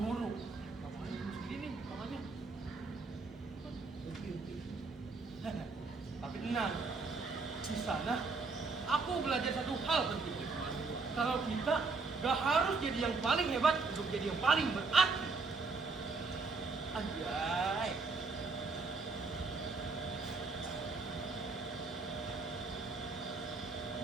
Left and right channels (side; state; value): left; quieter; 4.1 dB